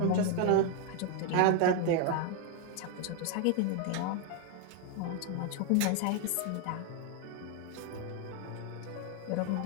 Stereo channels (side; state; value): both; different; correlation 0.01